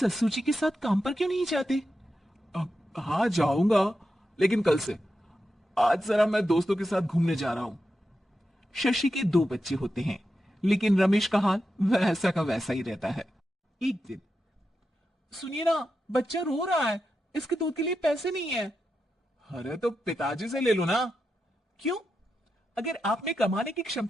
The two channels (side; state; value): both; normal; correlation 0.88